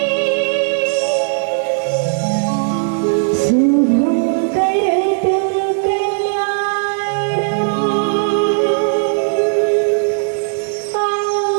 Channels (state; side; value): silent; left; 68 dB below the other